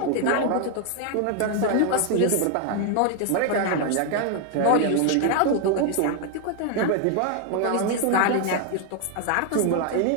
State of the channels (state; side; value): different; both; correlation 0.00